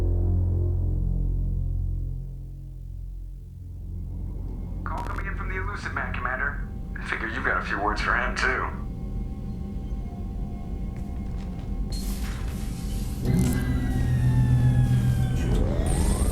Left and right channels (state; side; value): identical; both; correlation 1.00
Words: Call coming in from the Elusive Man, Commander. I figure you've got a few words for him, too.